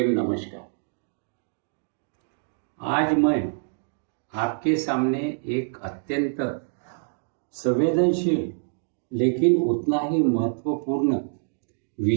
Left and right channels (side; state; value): left; silent; digital silence